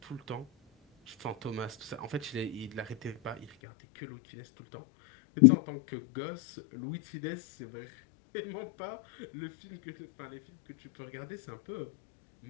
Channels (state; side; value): drops out; right; at 3.5 s